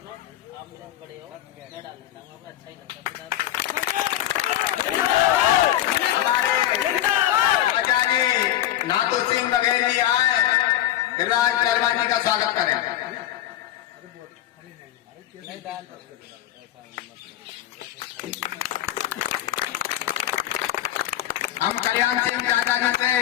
आप मेरे से बड़े हो, मैं डाल देता हूँ, आपको अच्छा ही लगता है। हमारे राजा जी नाथू सिंह बघेल जी आए, गिरिराज पहलवान जी का स्वागत करें। हम कल्याण सिंह चाचा जी से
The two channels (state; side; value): quieter; right; 13.1 dB